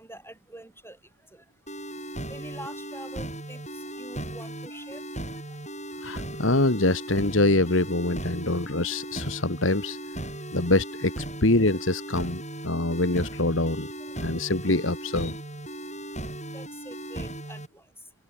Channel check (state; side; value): normal; both; correlation 0.20